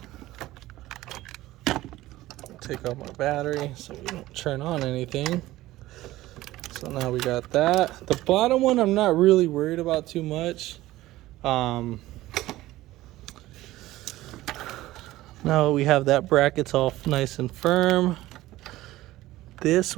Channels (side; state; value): left; quieter; 16.6 dB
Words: Take out my battery so we don't turn on anything. So now we got that. The bottom one I'm not really worried about too much. Now we have that bracket's all nice and firm. This